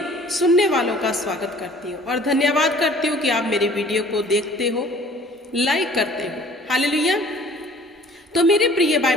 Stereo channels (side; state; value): both; normal; correlation 0.51